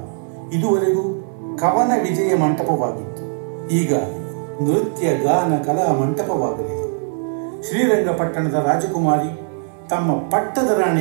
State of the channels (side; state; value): left; silent; 66 dB below the other